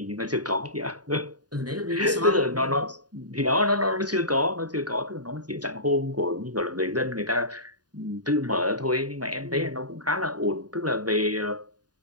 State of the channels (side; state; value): left; late; 0.69 ms